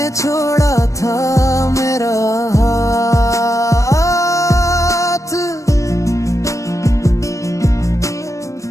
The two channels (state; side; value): late; right; 0.15 ms